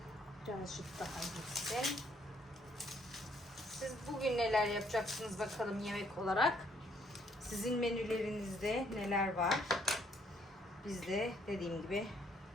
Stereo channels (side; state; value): both; normal; correlation 0.68